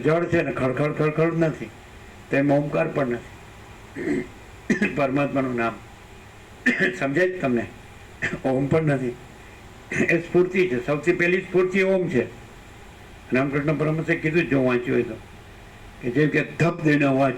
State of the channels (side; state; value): both; identical; correlation 1.00